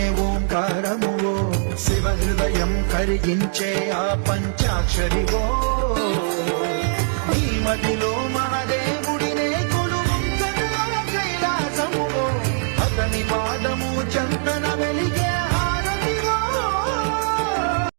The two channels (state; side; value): silent; left; digital silence